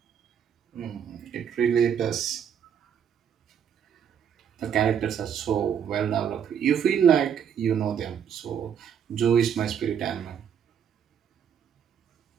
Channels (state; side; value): quieter; left; 8.2 dB